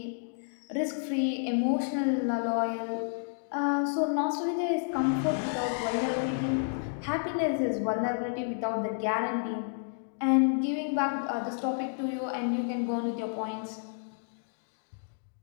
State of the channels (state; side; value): silent; right; digital silence